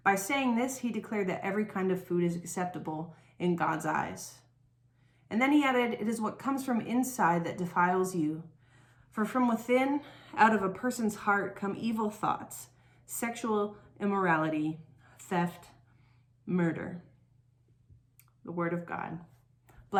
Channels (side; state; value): both; identical; correlation 1.00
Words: By saying this, he declared that every kind of food is acceptable in God's eyes. And then he added, 'It is what comes from inside that defiles you. For from within, out of a person's heart, come evil thoughts, sexual immorality, theft, murder.'" The word of God.